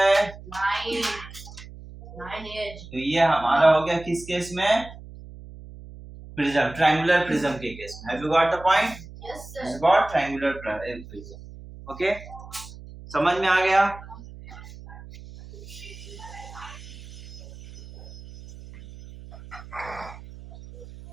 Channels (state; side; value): noise; right; hum, 16 dB below the sound